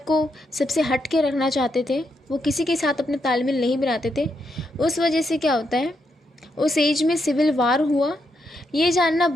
को सबसे हट के रखना चाहते थे, वो किसी के साथ अपने तालमेल नहीं बनाते थे। उस वजह से क्या होता है, उस एज में सिविल वार हुआ। ये जानना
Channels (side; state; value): both; normal; correlation 0.80